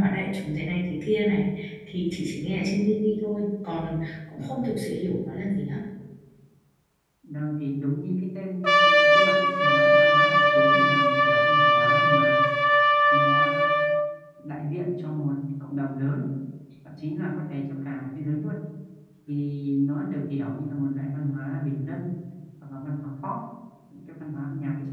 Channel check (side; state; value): both; identical; correlation 1.00